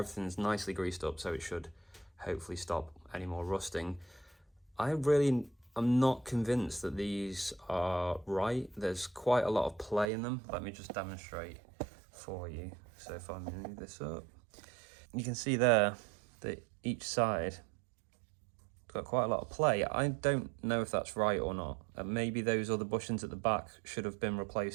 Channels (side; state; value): left; drops out; at 10.1 s